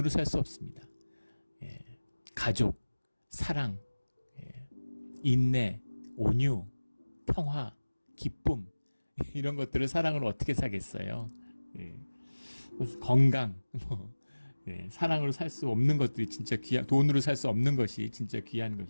살 수 없습니다. 가족, 사랑, 인내, 온유, 평화, 기쁨, 이런 것들을 사랑으로 어떻게 사겠어요? 건강, 사랑으로 살 수 없는 것들이 진짜 귀한, 돈으로 살 수 없는 것이 진짜 귀한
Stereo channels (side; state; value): both; inverted; correlation -1.00